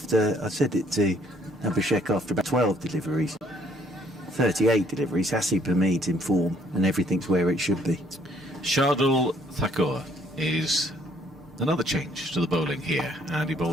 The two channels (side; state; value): both; normal; correlation 0.64